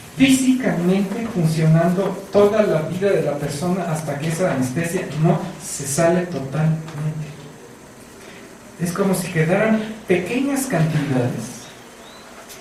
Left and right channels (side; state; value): both; identical; correlation 1.00